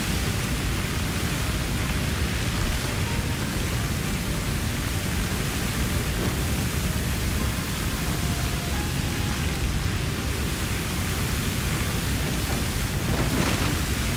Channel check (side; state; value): both; identical; correlation 1.00